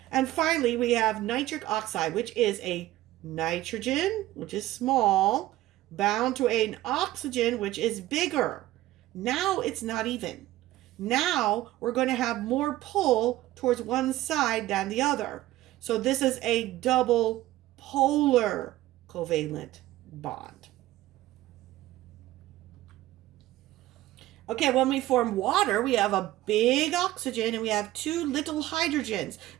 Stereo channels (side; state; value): left; quieter; 15.9 dB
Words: And finally, we have nitric oxide, which is a nitrogen, which is small, bound to an oxygen, which is bigger. Now it's not even. Now we're going to have more pull towards one side than the other. So this is a double polar covalent bond. Okay, when we form water, we have a big oxygen and we have two little hydrogens.